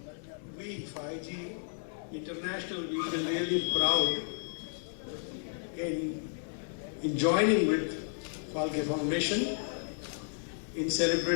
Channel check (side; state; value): right; silent; digital silence